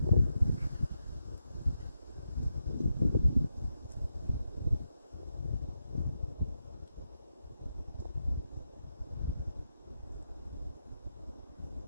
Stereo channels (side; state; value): both; inverted; correlation -0.85